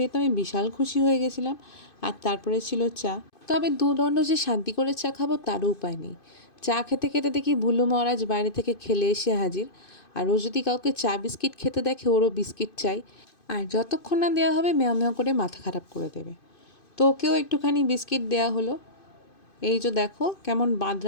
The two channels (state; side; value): late; right; 2.5 ms